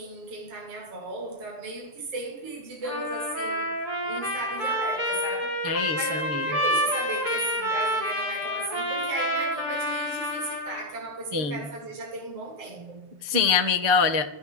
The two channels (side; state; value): left; late; 6.8 ms